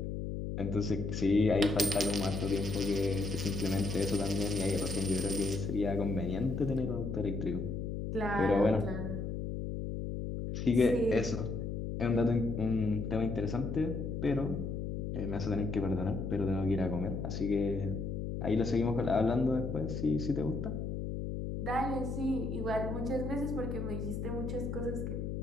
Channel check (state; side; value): noise; left; hum, 3 dB below the sound